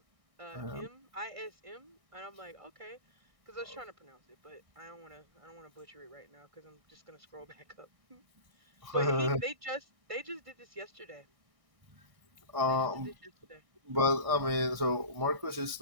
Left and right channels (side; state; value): left; late; 1.6 ms